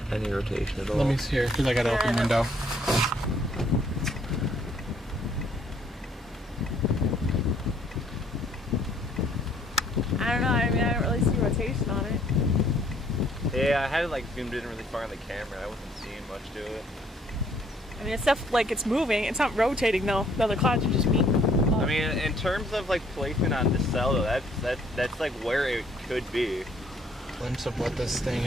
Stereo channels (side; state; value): both; normal; correlation 0.64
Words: rotation at all. Let me see here, because I got to open the window. I don't know. I mean, I don't really see rotation on it. Yeah, I had it like zoomed in really far on the camera. I wasn't seeing much to it. I mean, it's stuff like it's moving. It's not rotating though. The other clouds are just being. I mean, in terms of like placement on the cell, though, that's like where it could be. Glimpse of what this thing